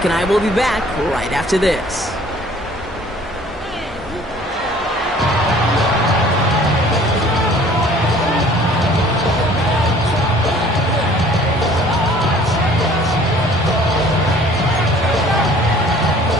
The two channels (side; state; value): both; normal; correlation 0.52